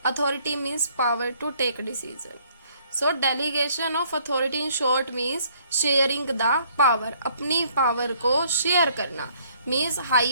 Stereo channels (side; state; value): both; inverted; correlation -0.63